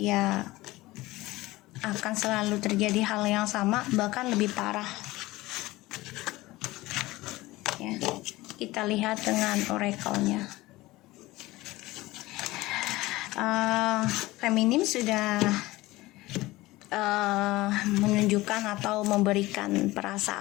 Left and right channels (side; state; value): right; quieter; 19.2 dB